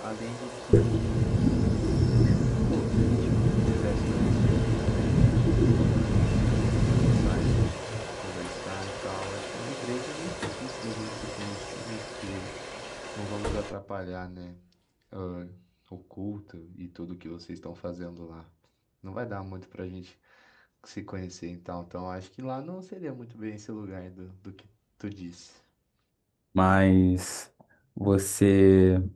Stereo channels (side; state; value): both; identical; correlation 1.00